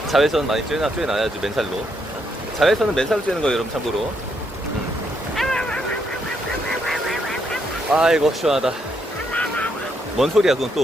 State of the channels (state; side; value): normal; both; correlation 0.76